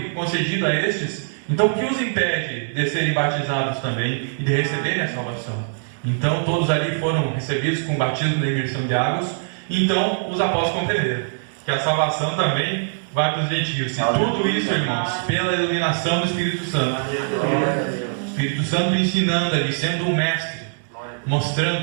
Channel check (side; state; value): left; silent; digital silence